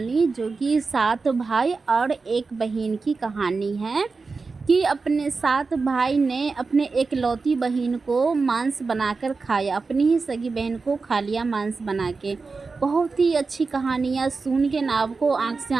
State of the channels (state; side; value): quieter; left; 4.3 dB